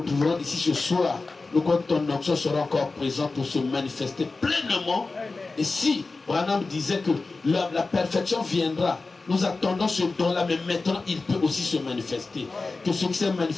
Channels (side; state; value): right; quieter; 3.7 dB